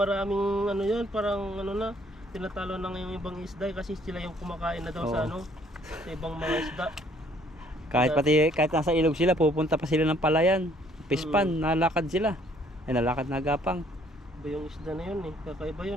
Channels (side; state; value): both; normal; correlation 0.62